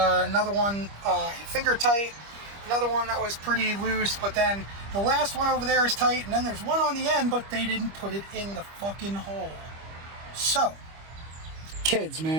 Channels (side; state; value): left; late; 25 ms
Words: one finger tight, another one that was pretty loose, but then the last one over there is tight, and then there's one on the end, but they didn't put it in the fucking hole. So, kids,